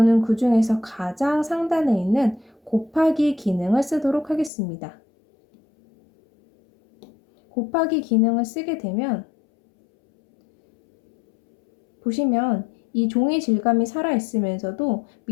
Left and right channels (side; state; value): right; drops out; at 4.5 s